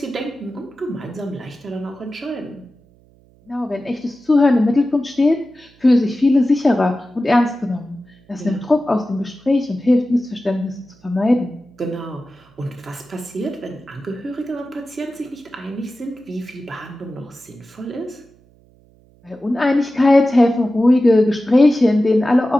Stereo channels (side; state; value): right; noise; hum, 30 dB below the sound